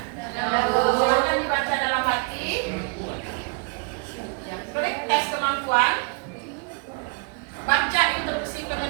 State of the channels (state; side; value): quieter; left; 34.0 dB